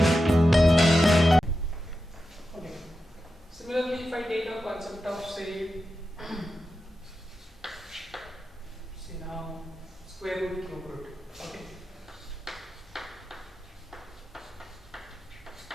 Similarly, if I take a concept of say now square root, cube root. Okay.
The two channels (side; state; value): both; normal; correlation 0.91